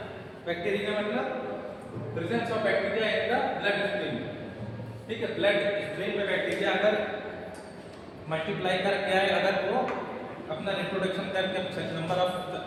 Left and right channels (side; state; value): both; identical; correlation 1.00